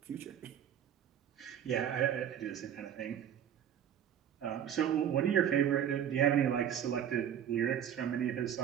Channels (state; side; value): quieter; left; 9.5 dB